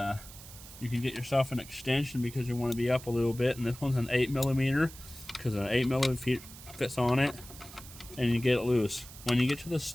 you can get yourself an extension because you want to be up a little bit, and this one's an 8mm because an 8mm fits on it, and you get it loose. When you get to the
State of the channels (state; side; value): noise; right; hiss, 16 dB below the sound